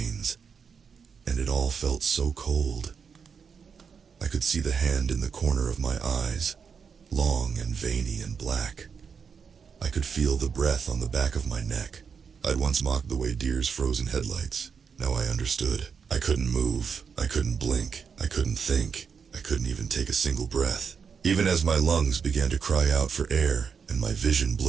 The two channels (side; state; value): left; quieter; 6.3 dB